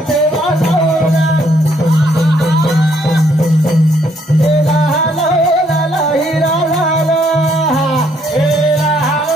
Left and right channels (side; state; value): both; normal; correlation 0.69